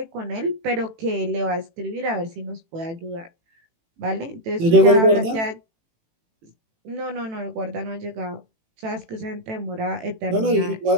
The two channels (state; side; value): late; left; 18 ms